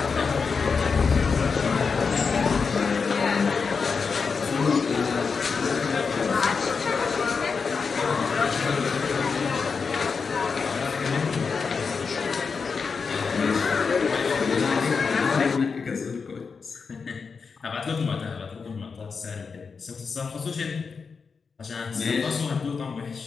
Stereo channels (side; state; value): right; quieter; 5.3 dB